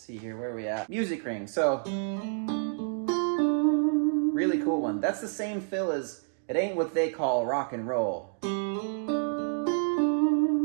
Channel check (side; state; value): left; silent; digital silence